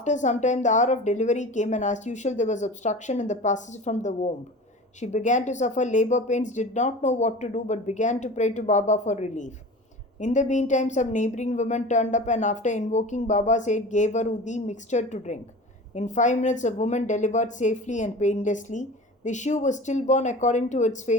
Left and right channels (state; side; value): normal; both; correlation 0.36